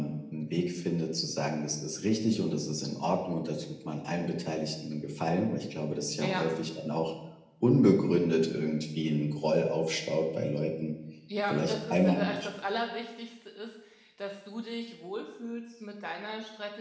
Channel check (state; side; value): identical; both; correlation 1.00